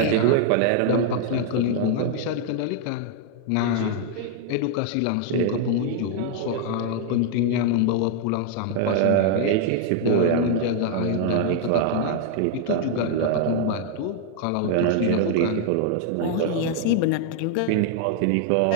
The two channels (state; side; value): different; both; correlation 0.00